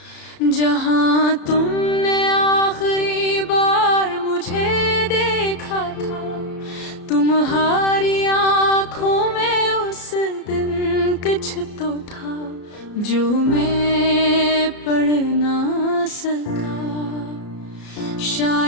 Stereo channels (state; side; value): late; right; 33 ms